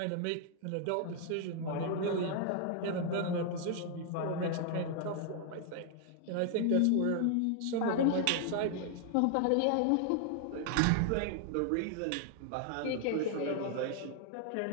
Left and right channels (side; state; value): both; different; correlation 0.00